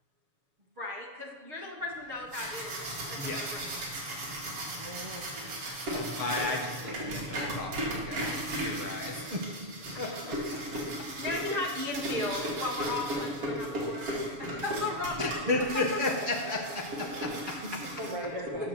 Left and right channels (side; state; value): left; late; 7.1 ms